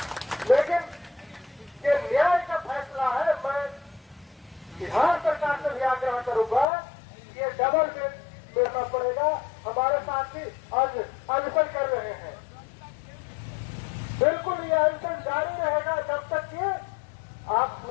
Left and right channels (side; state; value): right; drops out; at 6.7 s